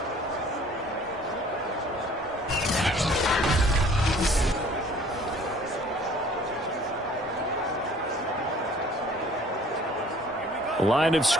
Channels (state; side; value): normal; both; correlation 0.53